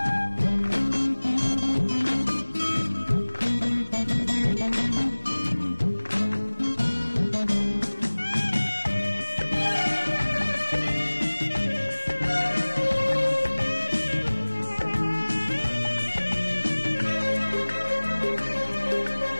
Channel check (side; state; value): both; inverted; correlation -1.00